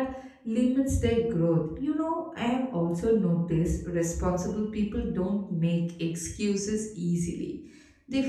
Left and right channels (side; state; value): both; identical; correlation 1.00